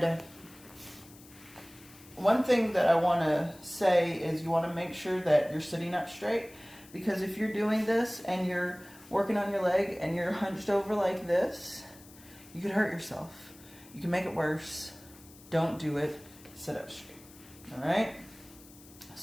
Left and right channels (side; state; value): left; noise; hiss, 22 dB below the sound